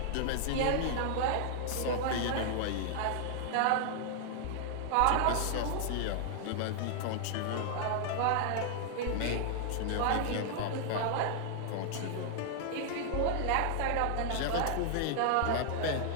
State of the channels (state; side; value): different; both; correlation 0.00